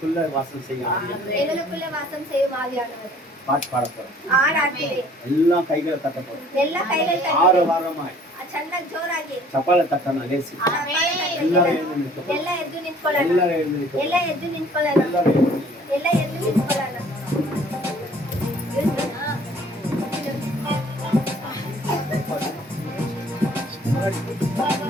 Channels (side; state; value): both; normal; correlation 0.54